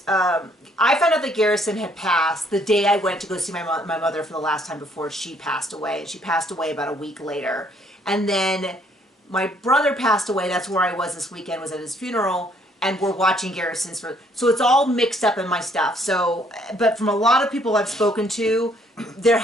I found out that Garrison had passed the day I went to go see my mother for the last time before she passed away. And she passed away about a week later. And then my brother passed away. That's where I was this weekend, was at his funeral. And we're watching Garrison's. So it's all mixed up in my stuff. So, but from a lot of people I've spoken to, they're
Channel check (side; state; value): both; normal; correlation 0.65